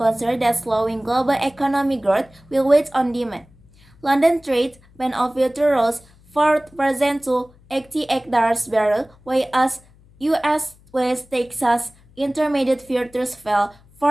that slowing global economic growth will weigh on demand. London trade went off rose 4% to $88 barrel, whereas US West Texas Intermediate futures fell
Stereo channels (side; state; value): left; noise; hum, 28 dB below the sound